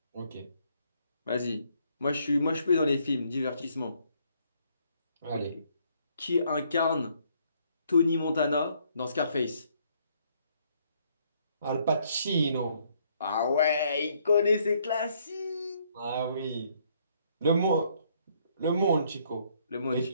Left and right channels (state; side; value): inverted; both; correlation -0.68